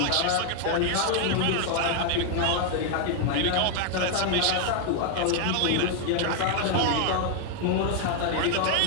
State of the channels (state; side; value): different; both; correlation 0.00